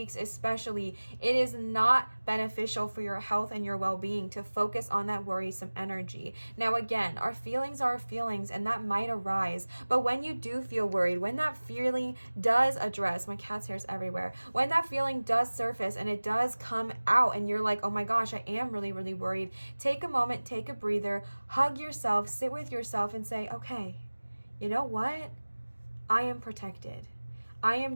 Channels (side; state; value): both; inverted; correlation -1.00